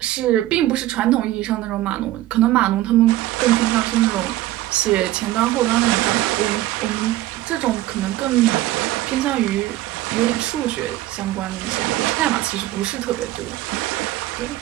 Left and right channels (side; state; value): left; quieter; 15.7 dB